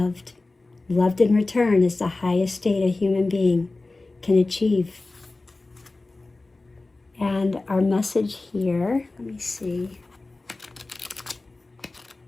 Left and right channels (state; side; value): quieter; right; 3.3 dB